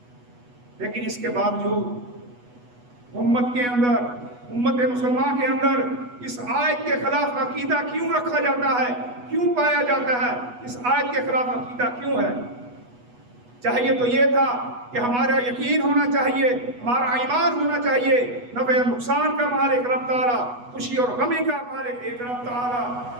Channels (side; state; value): left; late; 8.2 ms